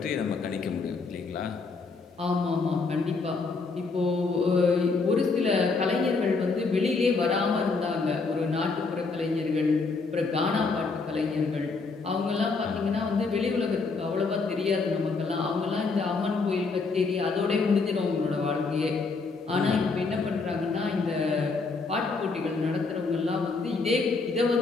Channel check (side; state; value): right; quieter; 4.2 dB